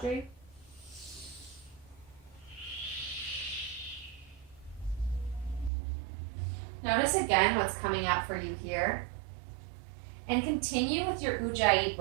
Notice again what's coming up for you here. And continue with your Ujjayi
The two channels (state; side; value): drops out; left; at 5.7 s